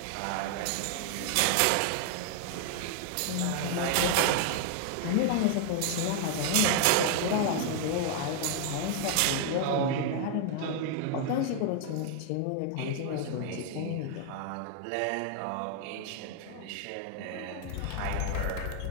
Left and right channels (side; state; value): both; different; correlation 0.00